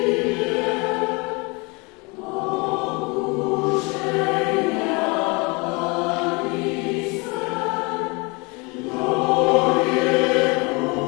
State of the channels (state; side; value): quieter; right; 28.3 dB